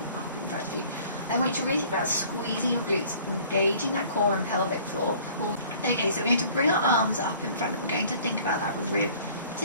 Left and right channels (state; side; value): inverted; both; correlation -0.52